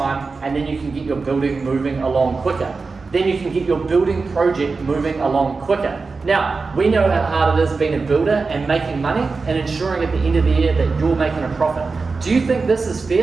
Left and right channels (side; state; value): left; quieter; 4.3 dB